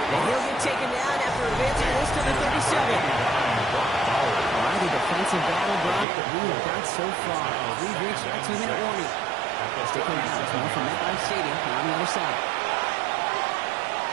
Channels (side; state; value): left; drops out; at 6.1 s